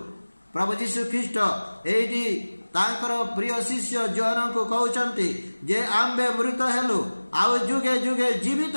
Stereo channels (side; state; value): both; inverted; correlation -1.00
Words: प्रभु जीशु ख्रीष्ट एठी तांकर प्रिय शिष्य जोहन को कहउचंती जे आम्बे मृत हेलु आउ जुगे जुगे जीवित